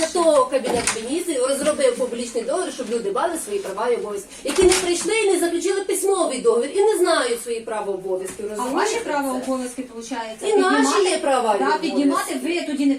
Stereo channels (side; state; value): both; identical; correlation 1.00